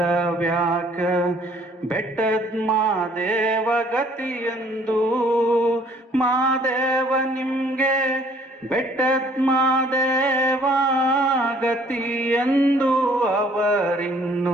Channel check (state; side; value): normal; both; correlation 0.59